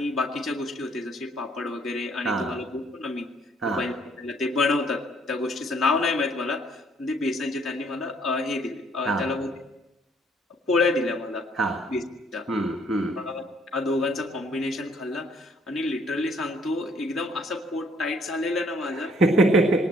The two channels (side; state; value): both; normal; correlation 0.63